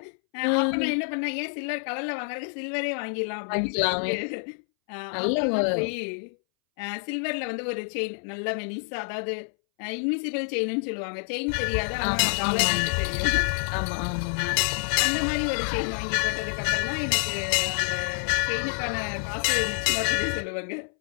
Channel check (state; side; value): silent; right; 60 dB below the other